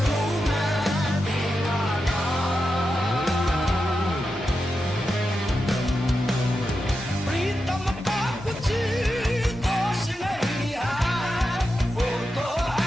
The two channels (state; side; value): normal; both; correlation 0.89